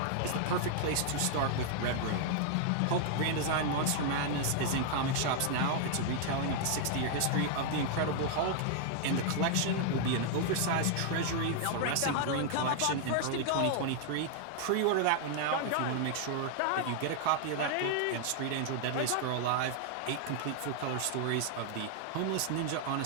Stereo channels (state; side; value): different; both; correlation 0.00